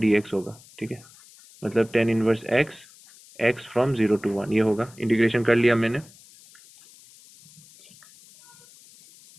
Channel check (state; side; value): noise; left; hiss, 24 dB below the sound